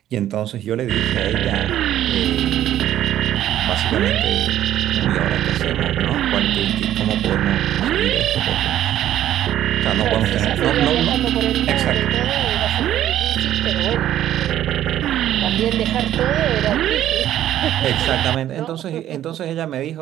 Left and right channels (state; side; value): quieter; left; 12.0 dB